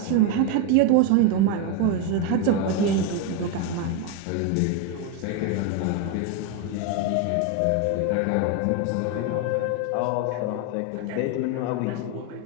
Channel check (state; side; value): different; both; correlation 0.02